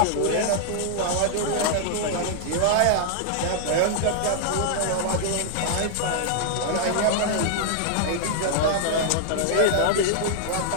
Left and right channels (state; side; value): different; both; correlation -0.01